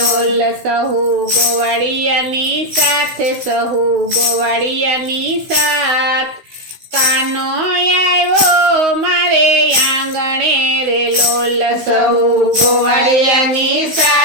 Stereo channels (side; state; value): left; late; 16 ms